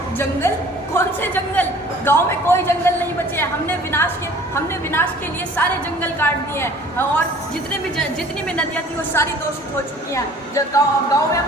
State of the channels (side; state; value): both; normal; correlation 0.50